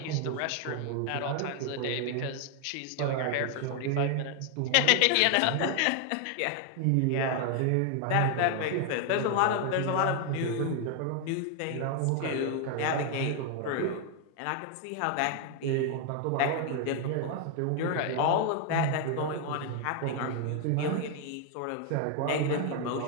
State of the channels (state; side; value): different; both; correlation 0.00